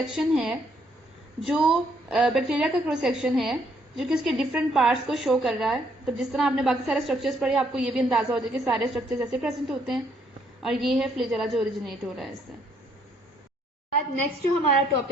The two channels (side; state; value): both; normal; correlation 0.69